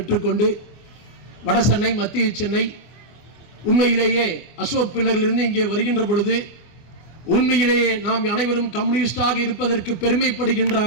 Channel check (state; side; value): late; right; 25 ms